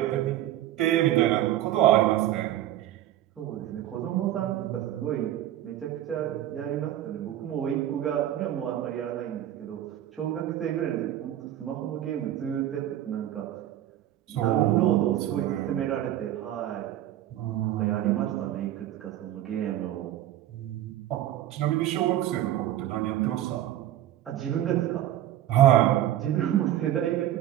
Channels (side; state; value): left; quieter; 12.7 dB